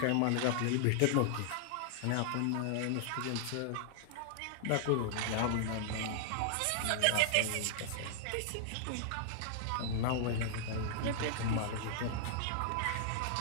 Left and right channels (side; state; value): both; different; correlation -0.01